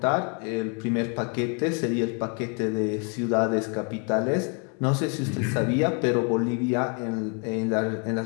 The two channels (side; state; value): right; quieter; 36.2 dB